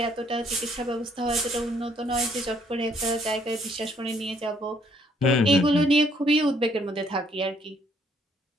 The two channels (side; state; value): both; normal; correlation 0.66